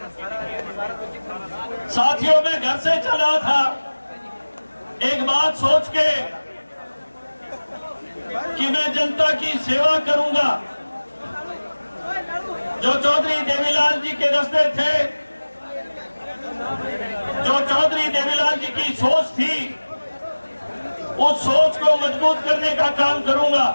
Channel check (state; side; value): inverted; both; correlation -1.00